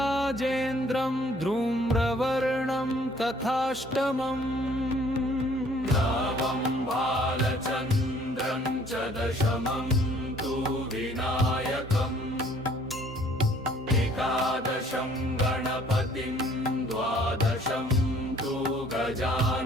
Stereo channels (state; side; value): normal; both; correlation 0.58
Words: धूम्रवर्णं तथाष्टमम् नवं बालचन्द्रं च दशमं तु विनायकम् एकादशं गणपतिं द्वादशं तु